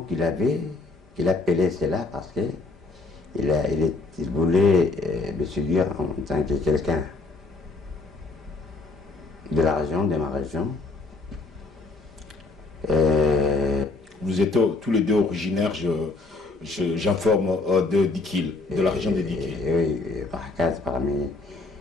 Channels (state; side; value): quieter; right; 3.7 dB